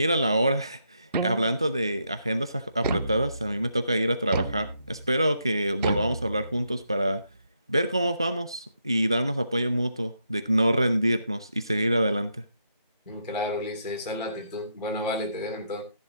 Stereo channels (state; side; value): inverted; both; correlation -0.79